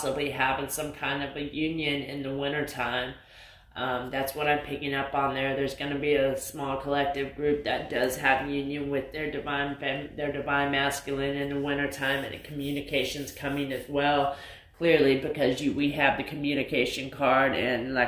having some kind of a union in the winter time. That's what I'm picking up on there. There's going to be a small collective group that does have union with their divine masculine in the wintertime, and communication's coming as well, clearly, because we have the communication card, and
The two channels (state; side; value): identical; both; correlation 1.00